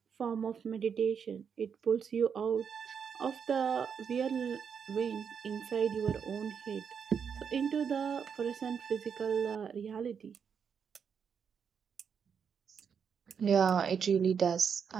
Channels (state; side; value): quieter; left; 6.9 dB